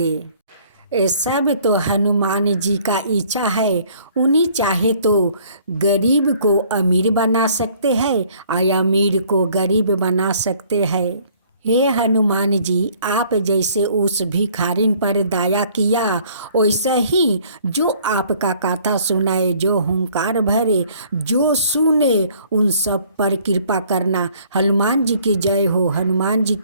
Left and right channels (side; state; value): both; inverted; correlation -0.58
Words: ये सब तो हनुमान जी का इच्छा है। उन्हीं चाहे तो गरीब को अमीर बना सकते हैं और अमीर को गरीब बना सकते हैं। हे हनुमान जी, आप जैसे उस भिखारिन पर दया किया, वैसे ही जो आपका कथा सुनाए, जो हुंकार भरे, जो सुने, उन सब पर कृपा करना। हनुमान जी की जय हो, हनुमान जी